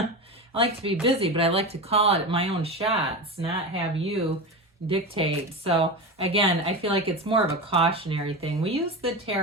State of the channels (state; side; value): normal; both; correlation 0.23